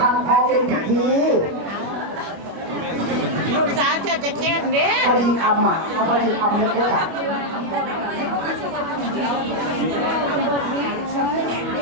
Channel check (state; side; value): late; left; 25 ms